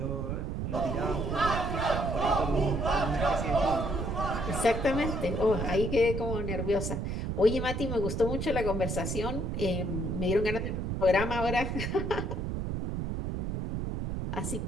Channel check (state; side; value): noise; right; rumble, 2 dB below the sound